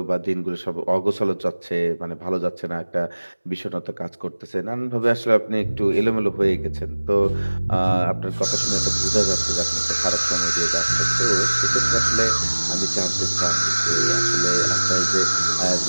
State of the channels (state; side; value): inverted; both; correlation -1.00